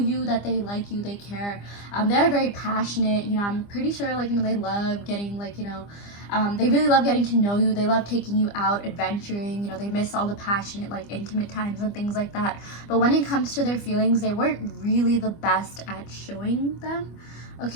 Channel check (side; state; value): right; late; 25 ms